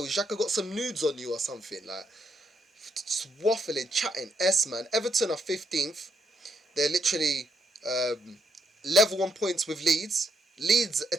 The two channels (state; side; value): normal; both; correlation 0.77